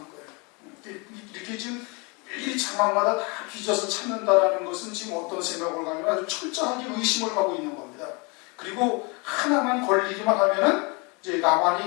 거예요. 이렇게 지금 이 장막마다 다 뒤져서 찾는다라는 것은 지금 어떤 생각을 가면 아주 철저하게 의심을 하고 있는 겁니다. 그리고 하나만 걸리기만 하면은 이제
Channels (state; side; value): quieter; right; 30.1 dB